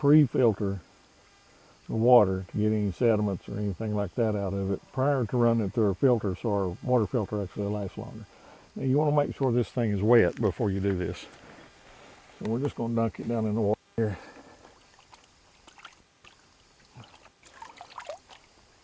the water to get any sediments or anything like that out of it prior to running it through our filter, so our water filter actually lasts longer. Now you want to make sure this thing is wet before you do this. So we're just going to dunk it down in the water here.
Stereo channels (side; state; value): both; identical; correlation 1.00